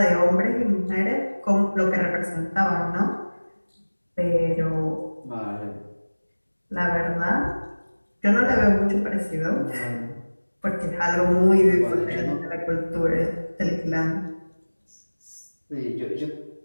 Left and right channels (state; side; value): inverted; both; correlation -1.00